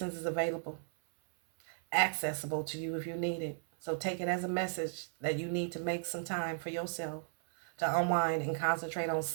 is available, accessible to you if you need it. So take it as a message that you need to make some time for yourself to unwind and concentrate on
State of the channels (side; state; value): left; silent; 54 dB below the other